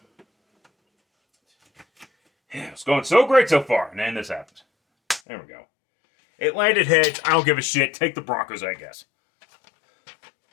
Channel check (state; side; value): drops out; right; at 5.2 s